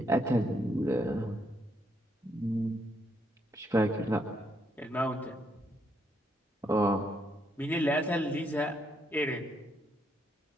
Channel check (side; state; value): both; normal; correlation 0.75